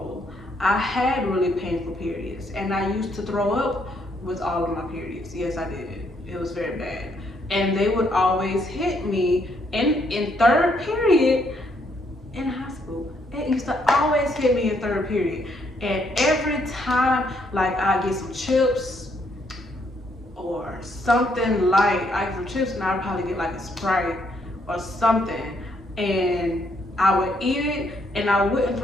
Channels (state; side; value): normal; both; correlation 0.72